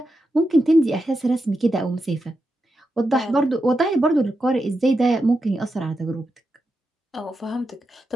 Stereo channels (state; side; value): normal; both; correlation 0.87